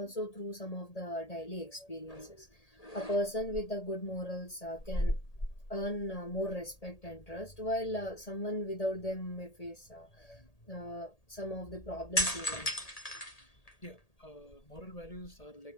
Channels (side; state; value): right; late; 1.8 ms